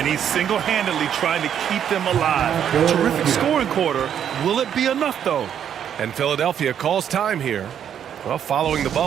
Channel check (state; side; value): quieter; left; 9.1 dB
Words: he's single-handedly trying to keep them alive. Terrific scoring quarter. Will it be enough, though? And Philadelphia calls time here. Well, following the